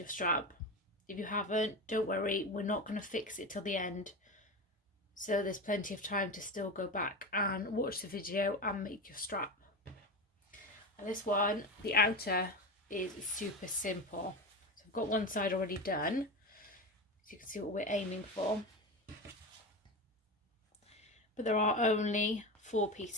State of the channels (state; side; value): normal; both; correlation 0.23